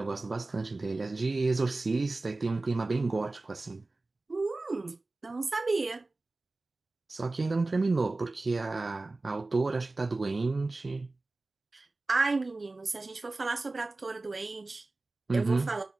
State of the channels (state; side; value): quieter; left; 3.2 dB